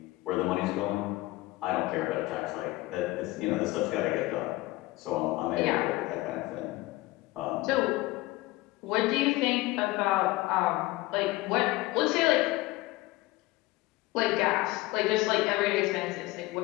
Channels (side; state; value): right; quieter; 19.6 dB